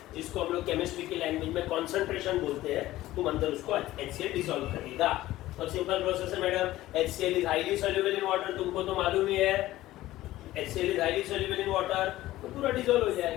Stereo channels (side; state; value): right; quieter; 15.9 dB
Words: जिसको हम लोग केमिस्ट्री की लैंग्वेज में कंसंट्रेशन बोलते हैं, तुम अंदर उसको HCl डिसॉल्व करेगा। और सिंपल प्रोसेस है madam, HCl is highly soluble in water, तुमको तो मालूम ही है, HCl is highly soluble in water, तो पूरा डिसॉल्व हो